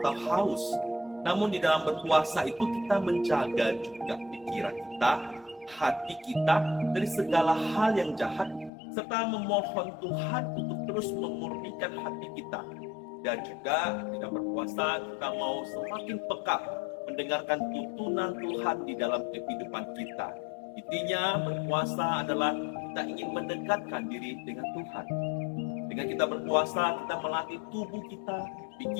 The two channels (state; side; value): drops out; right; at 8.7 s